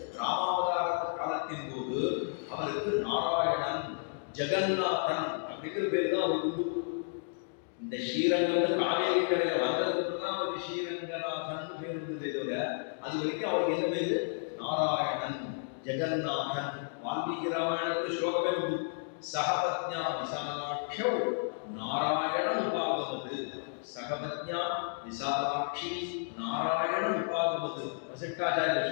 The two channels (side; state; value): right; silent; digital silence